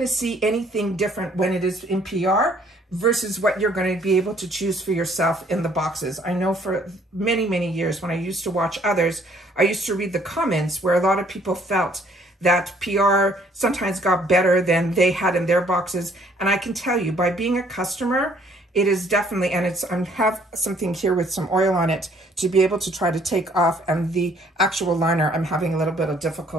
to see anything different when it is in PR versus what you're going to be able to choose for yourself in the boxes. I know for many, many years when I used to watch others, I used to read the comments where a lot of people felt that PR sometimes got better than they had in their boxes. And I can tell you, by being a customer, it is definitely, and it's, I have something here with some oil on it to be able to try to take off, and the actual liner, I'm having a little bit of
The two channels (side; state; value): both; normal; correlation 0.62